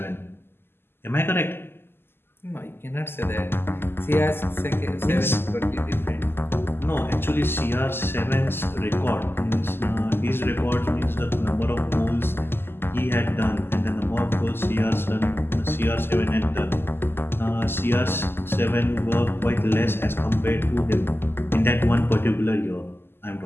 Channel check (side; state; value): right; late; 0.11 ms